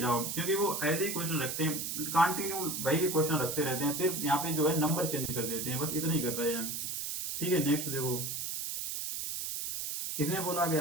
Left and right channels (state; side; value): noise; right; hiss, 3 dB below the sound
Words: जाओ, क्योंकि वो ऐसे ही क्वेश्चन रखते हैं, कंटिन्यू वही क्वेश्चन रखते रहते हैं, सिर्फ यहाँ पे जो है नंबर चेंज कर देते हैं, बस इतना ही कर रहे हैं। ठीक है, नेक्स्ट देखो। इसमें बोला